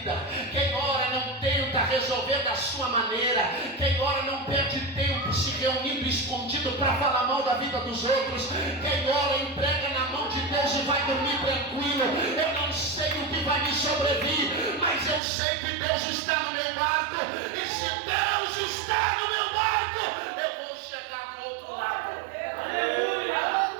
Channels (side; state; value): left; drops out; at 15.2 s